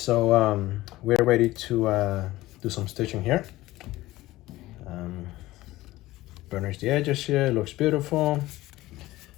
we're ready to do some stitching here. Burnish the edges here, it looks beautiful.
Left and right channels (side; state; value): right; quieter; 17.4 dB